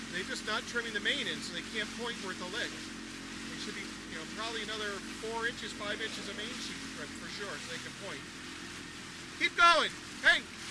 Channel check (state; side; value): identical; both; correlation 1.00